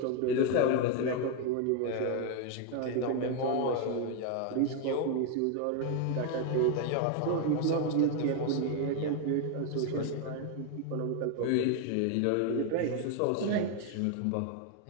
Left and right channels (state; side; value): different; both; correlation 0.01